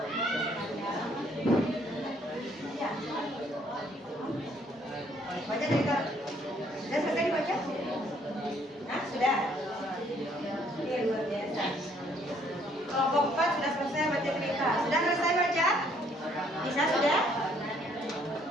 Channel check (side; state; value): both; normal; correlation 0.65